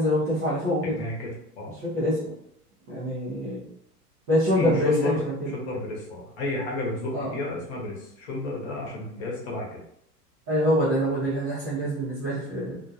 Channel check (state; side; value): normal; both; correlation 0.40